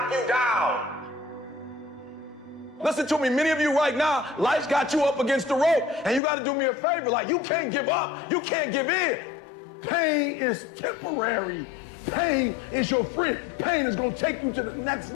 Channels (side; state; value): right; drops out; at 6.2 s